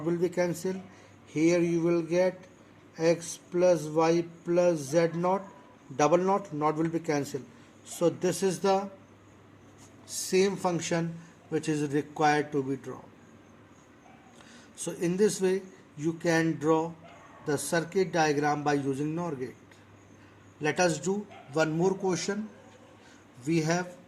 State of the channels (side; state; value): both; identical; correlation 1.00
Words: will be cancelled. Here you will get X plus Y plus Z naught double knot will be cancelled. So this is the same function which is required to be drawn. So in this way you can draw the circuit diagram by using NOR gate. Let us do one more question. We have